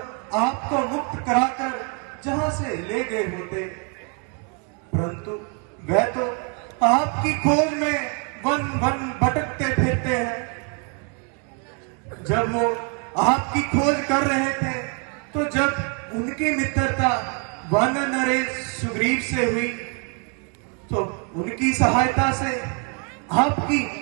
आपको मुक्त कराकर जहां से ले गए होते। परंतु वह तो आपकी खोज में वन वन भटकते फिरते हैं। जब वो आपकी खोज कर रहे थे, तो जब उनकी मित्रता वन नरेश सुग्रीव से हुई, तो उनकी सहायता से आपकी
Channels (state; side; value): quieter; left; 35.5 dB